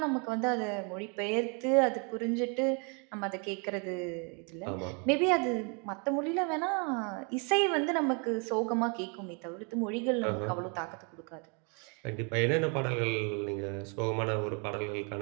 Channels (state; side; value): quieter; left; 35.5 dB